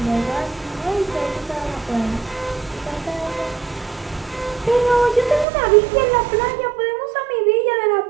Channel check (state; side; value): drops out; left; at 5.5 s